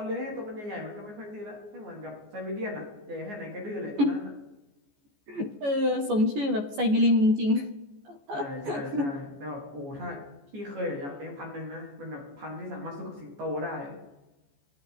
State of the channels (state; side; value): late; left; 14 ms